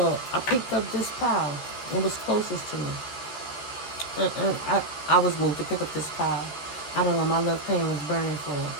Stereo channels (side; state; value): right; late; 13 ms